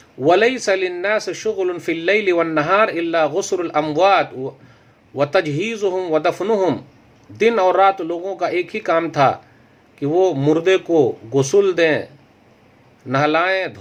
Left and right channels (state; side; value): identical; both; correlation 1.00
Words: वलैसा लिन्नास शुग़ुलुन फ़िल लैलि वन नहार इल्ला गुस्रुल अमवात व तजहीज़ुहुम व दफ़नुहुम। दिन और रात लोगों का एक ही काम था कि वो मुर्दे को गुस्ल दें, नहलाएं,